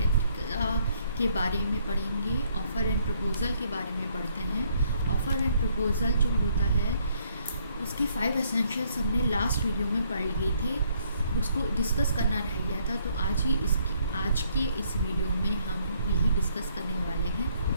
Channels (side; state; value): both; inverted; correlation -0.68